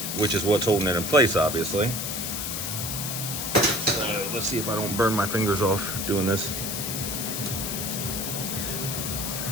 which is what's holding it in place, obviously. So, let's see if I don't burn my fingers off doing this.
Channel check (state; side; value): noise; left; hiss, 3 dB below the sound